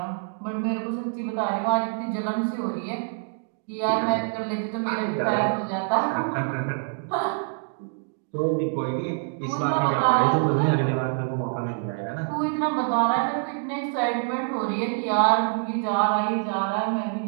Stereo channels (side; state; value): left; silent; 61 dB below the other